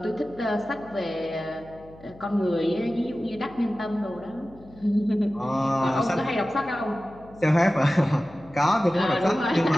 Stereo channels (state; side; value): noise; left; hum, 22 dB below the sound